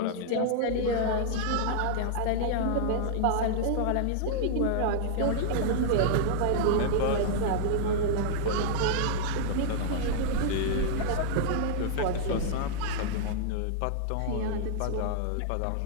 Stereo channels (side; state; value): both; different; correlation -0.01